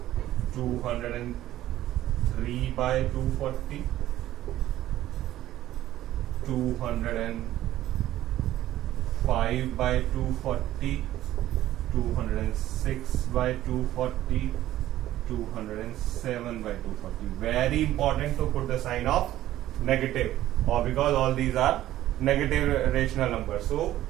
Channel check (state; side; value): quieter; left; 13.9 dB